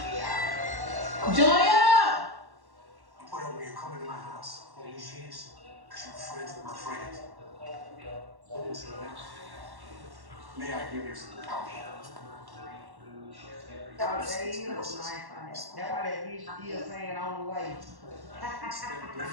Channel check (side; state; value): left; late; 1.1 ms